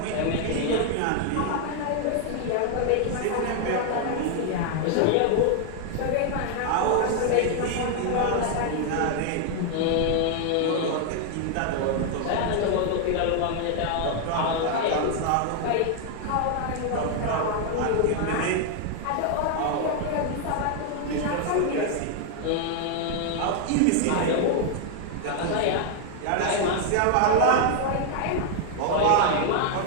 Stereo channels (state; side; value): different; both; correlation 0.00